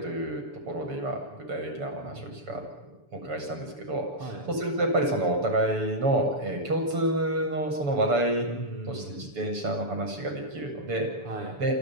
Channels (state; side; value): late; left; 7.0 ms